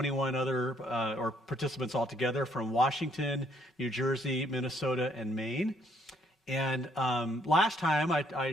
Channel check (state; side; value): normal; both; correlation 0.68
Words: other participants altogether from Washington, New Jersey, Minnesota, and Maine. And last time I